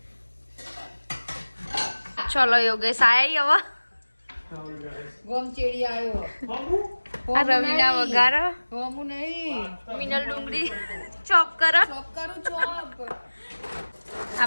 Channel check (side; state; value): both; inverted; correlation -1.00